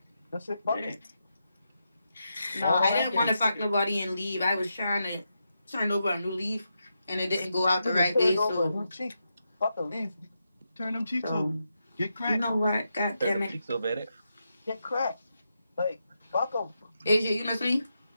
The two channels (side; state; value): both; inverted; correlation -0.85